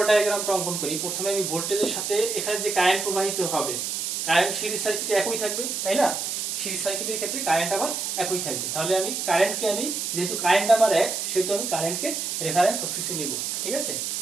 ডায়াগ্রামটা অঙ্কন করি, প্রথমে আমি ভোল্টেজের সাথে এখানে যে কারেন্ট প্রবাহিত হবে, কারেন্ট সিরিজ সার্কিটে একই থাকবে, তাই না? সিরিজ সার্কিটের ক্ষেত্রে কারেন্ট আবার একই থাকবে। তাহলে আমি কারেন্টকে যেহেতু কারেন্ট আমার এক, সেহেতু আমি কারেন্টকে রেফারেন্স অক্সিসে নিব। ঠিক আছে,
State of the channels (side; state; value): right; noise; hiss, 2 dB below the sound